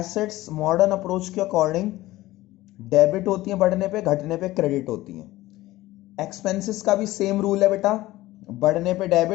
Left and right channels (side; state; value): right; quieter; 17.2 dB